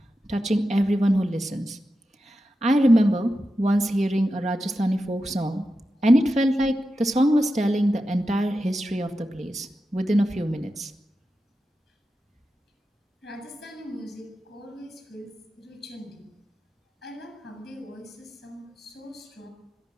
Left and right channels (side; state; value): both; normal; correlation 0.90